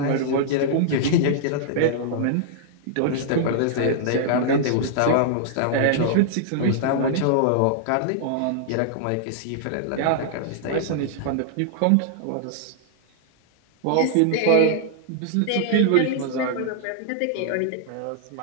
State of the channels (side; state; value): both; different; correlation -0.01